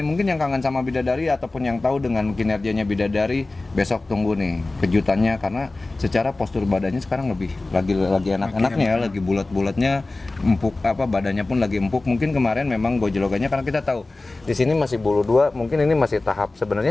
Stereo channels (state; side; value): quieter; right; 3.1 dB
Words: Mungkin yang kangen sama Bidadari ataupun yang tahu dengan kinerjanya Bidadari, besok tunggu nih kejutannya, karena secara postur badannya sekarang lagi enak-enaknya ya, lagi bulat-bulatnya, empuk, badannya pun lagi empuk. Mungkin kemarin memang gojlogannya, karena kita tahu di sini masih bulu 2, mungkin ini masih tahap, sebenarnya